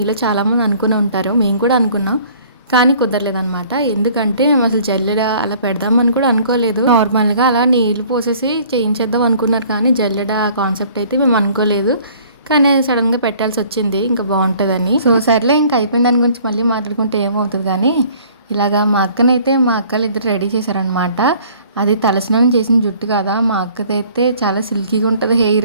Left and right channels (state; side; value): inverted; both; correlation -0.54